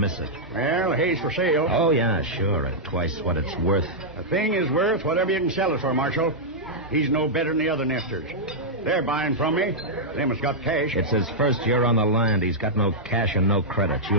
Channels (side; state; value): both; normal; correlation -0.08